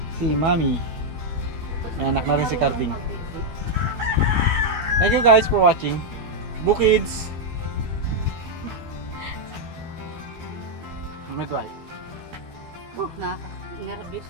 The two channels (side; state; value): left; late; 12 ms